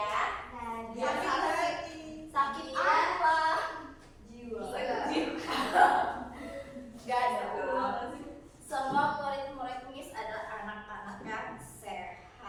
Sakit apa? Jiwa. Gak ada. Semua murid-murid Miss adalah anak-anak yang sehat.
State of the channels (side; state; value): both; identical; correlation 1.00